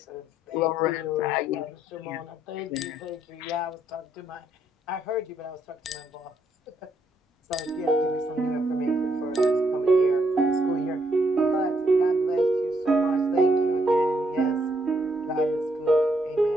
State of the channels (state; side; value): normal; both; correlation 0.73